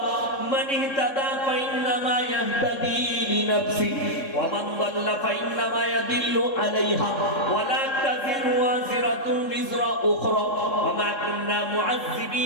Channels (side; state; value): right; late; 3.7 ms